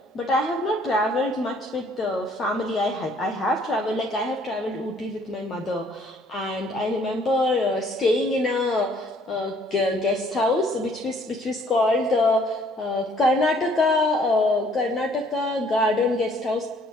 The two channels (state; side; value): normal; both; correlation 0.61